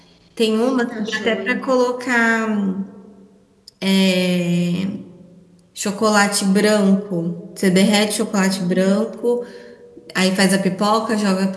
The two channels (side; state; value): both; identical; correlation 1.00